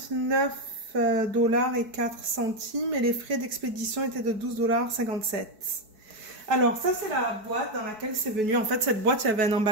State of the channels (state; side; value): late; left; 4.6 ms